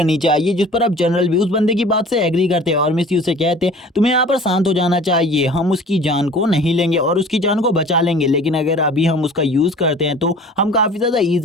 चाहिए। जिस पर अब जनरल भी उस बंदे की बात से एग्री करते हैं और मिस यू से कहते हैं तुम्हें यहाँ पर शांत हो जाना चाहिए, हम उसकी जान को नहीं लेंगे और उसकी जान को बचा लेंगे, लेकिन अगर अभी हम उसका यूज़ करते हैं तो हम काफ़ी ज़्यादा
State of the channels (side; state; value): both; normal; correlation 0.45